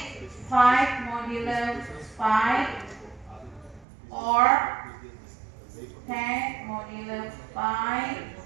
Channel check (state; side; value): drops out; left; at 3.9 s